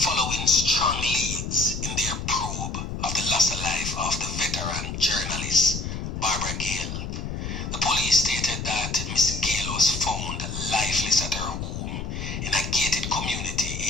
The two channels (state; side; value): noise; left; rumble, 5 dB below the sound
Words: strong leads in their probe of the loss of life of the veteran journalist Barbara Gayle. The police stated that Miss Gayle was found lifeless at her home in a gated community